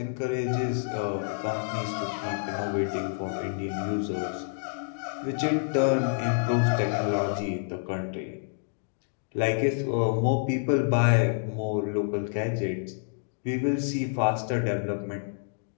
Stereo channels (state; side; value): silent; right; digital silence